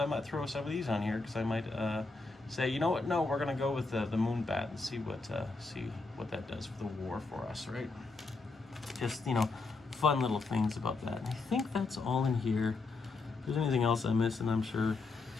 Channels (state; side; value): quieter; right; 3.7 dB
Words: might throw some of these on here because I might say, you know what, no, we're going to go with the Moonbat and see what that does for the war for us, right? Just, you know, fun little things about that. And I think that's all in here. If there's anything else I missed, and I'm sure